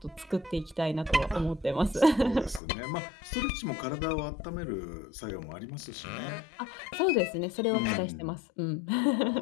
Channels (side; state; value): right; drops out; at 2.6 s